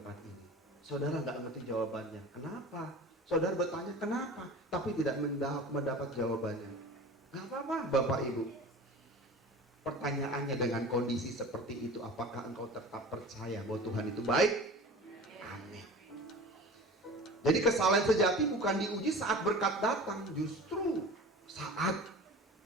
ini. Saudara nggak ngerti jawabannya. Kenapa? Saudara bertanya kenapa, tapi tidak mendapat jawabannya. Nggak apa-apa Bapak Ibu. Pertanyaannya dengan kondisi seperti itu, apakah engkau tetap percaya bahwa Tuhan itu baik? Amin. Jadi kesalahan sejati bukan diuji saat berkat datang, justru saat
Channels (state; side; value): normal; both; correlation 0.38